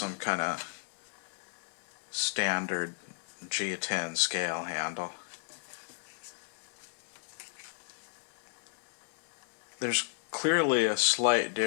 kind of standard G10 scale handle. There's clearly a slight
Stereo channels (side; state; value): right; silent; 55 dB below the other